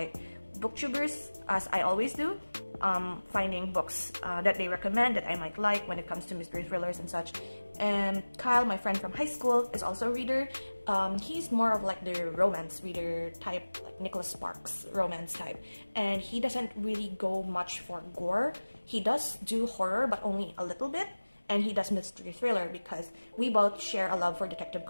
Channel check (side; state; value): both; inverted; correlation -1.00